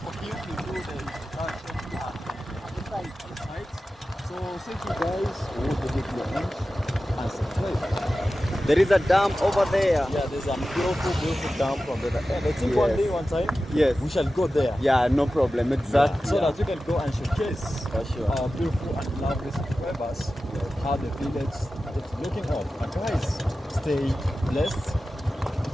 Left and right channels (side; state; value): both; normal; correlation 0.94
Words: him to do the introduction inside. So I'll say to you guys, hold the video and subscribe. There is a dam over there. Yeah, there's a beautiful dam from there. And I think one day, one time, Yes. we shall go there. Yeah, no problem. Exactly. So that we can go and showcase For sure. our beautiful and lovely subscribers, how the village is looking up. And guys, stay blessed